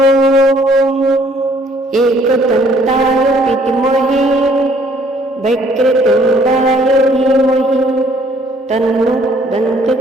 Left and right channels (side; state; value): both; normal; correlation 0.61